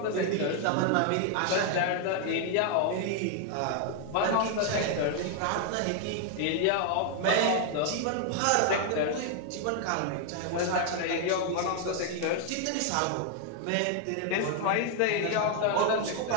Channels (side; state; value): both; different; correlation 0.00